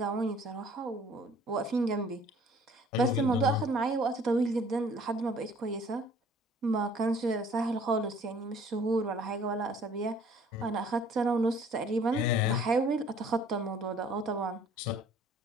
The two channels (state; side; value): normal; both; correlation 0.55